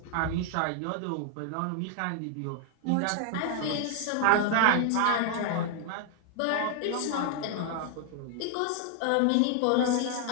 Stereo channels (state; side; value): different; both; correlation 0.00